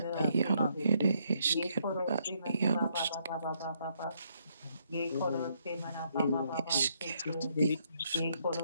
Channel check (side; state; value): both; inverted; correlation -0.73